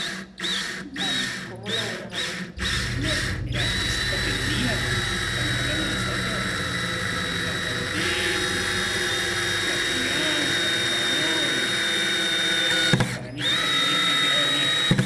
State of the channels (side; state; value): both; identical; correlation 1.00